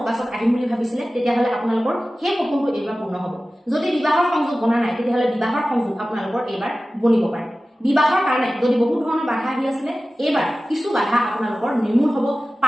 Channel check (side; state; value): both; normal; correlation 0.96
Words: আহিম বুলি ভাবিছিলে তেতিয়াহ'লে আপোনালোকৰ সেই সপোনটো এইবাৰ পূৰ্ণ হ'ব যদি বিবাহৰ সংযোগ বনা নাই তেতিয়াহ'লে বিবাহৰ সংযোগ আপোনালোকৰ এইবাৰ বনিব পাৰে বিবাহৰ কাৰণে যদি বহুত ধৰণৰ বাধা আহি আছিলে এইবাৰ কিছু বাধা আপোনালোকৰ নিৰ্মূল হ'ব